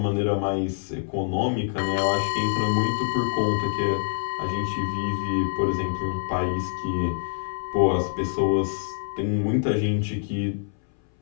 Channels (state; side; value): silent; right; 60 dB below the other